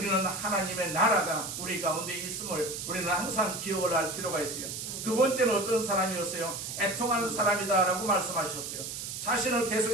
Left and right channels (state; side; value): noise; right; hiss, 6 dB below the sound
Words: 하나님의 나라가 우리 가운데 있음을 우리는 항상 기억을 할 필요가 있어요. 두 번째는 어떤 사람이었어요? 애통하는 사람이다 라고 말씀하셨어요. 자신을